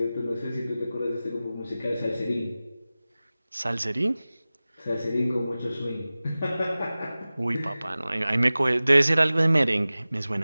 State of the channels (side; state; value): both; inverted; correlation -0.97